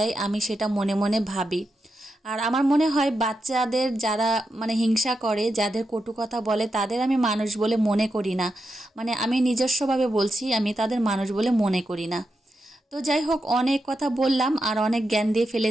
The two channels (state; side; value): normal; both; correlation 0.87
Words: আমি সেটা মনে মনে ভাবি। আর আমার মনে হয় বাচ্চাদের যারা মানে হিংসা করে, যাদের কটু কথা বলে, তাদের আমি মানুষ বলে মনে করি না। মানে আমি নিজস্বভাবে বলছি, আমি তাদের মানুষ বলে মনে করি না। তো যাই হোক, অনেক কথা বললাম আর অনেক জ্ঞান দিয়ে